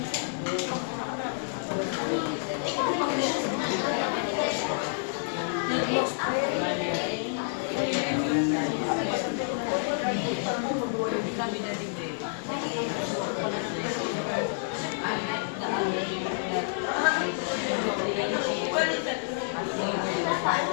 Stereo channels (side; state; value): right; silent; digital silence